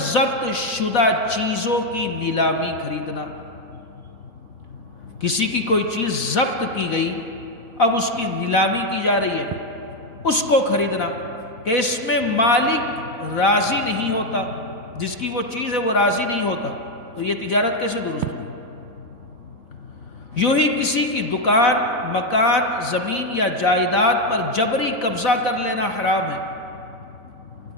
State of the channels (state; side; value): late; right; 3.8 ms